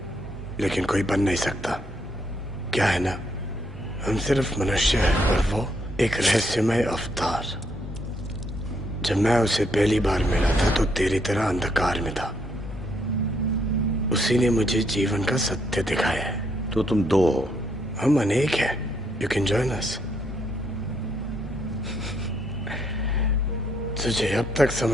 लेकिन कोई बन नहीं सकता। क्या है ना, हम सिर्फ मनुष्य हैं और वो एक रहस्यमय अवतार। जब मैं उसे पहली बार मिला था तो तेरी तरह अंधकार में था। उसी ने मुझे जीवन का सत्य दिखाया है। तो तुम दो हो? हम अनेक हैं। You can join us. तुझे अब तक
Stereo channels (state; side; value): normal; both; correlation 0.73